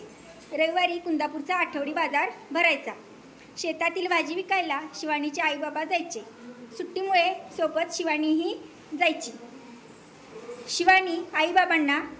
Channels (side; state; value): both; identical; correlation 1.00